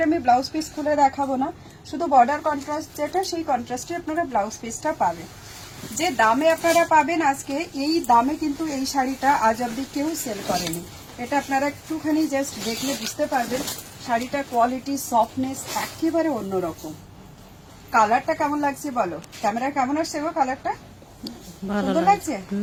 আমি ব্লাউজ পিস খুলে দেখাবো না, শুধু বর্ডার কন্ট্রাস্ট যেটা, সেই কন্ট্রাস্টে আপনারা ব্লাউজ পিসটা পাবেন। যে দামে আপনারা পাবেন আজকে, এই দামে কিন্তু এই শাড়িটা আজ অব্দি কেউ সেল করেনি। এটা আপনারা একটুখানি জাস্ট দেখলে বুঝতে পারবেন শাড়িটার কোয়ালিটি, সফটনেস একেবারে অন্যরকম। কালারটা কেমন লাগছে বলো, ক্যামেরা কেমন আসছে গো? কালারটা সুন্দর লাগছে।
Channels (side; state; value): both; identical; correlation 1.00